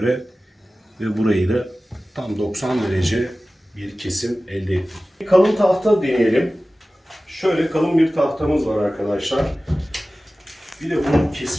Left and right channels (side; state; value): both; normal; correlation 0.96